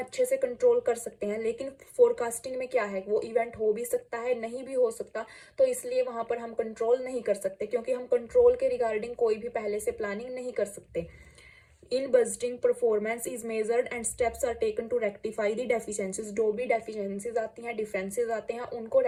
से कंट्रोल कर सकते हैं। लेकिन फोरकास्टिंग में क्या है, वो इवेंट हो भी सकता है, नहीं भी हो सकता, तो इसलिए वहां पर हम कंट्रोल नहीं कर सकते, क्योंकि हम कंट्रोल के रिगार्डिंग कोई भी पहले से प्लानिंग नहीं कर सकते। In budgeting performance is measured and steps are taken to rectify the deficiencies. जो भी डेफिशिएंसीज आती हैं, डिफरेंसेस आते हैं, उनको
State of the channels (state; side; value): identical; both; correlation 1.00